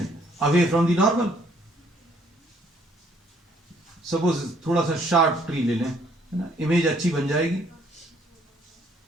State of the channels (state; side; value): normal; both; correlation 0.64